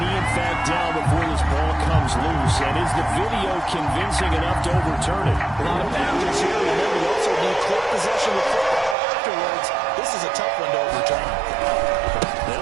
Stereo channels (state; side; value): drops out; left; at 9.0 s